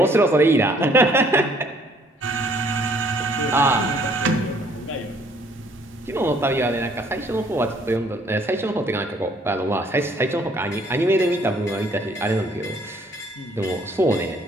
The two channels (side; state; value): both; normal; correlation 0.62